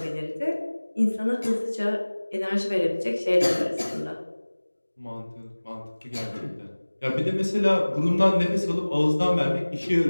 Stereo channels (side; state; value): both; inverted; correlation -1.00